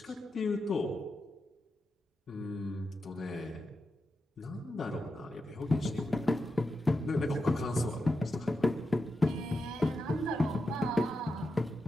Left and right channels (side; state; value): both; normal; correlation 0.88